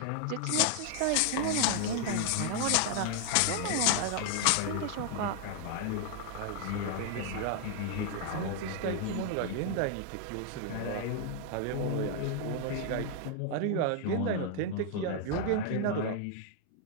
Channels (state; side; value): different; both; correlation 0.00